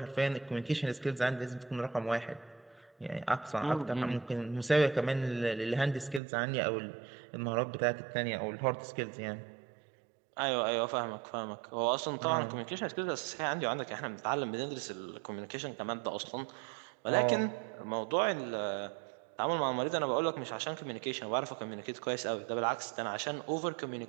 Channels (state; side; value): drops out; left; at 6.2 s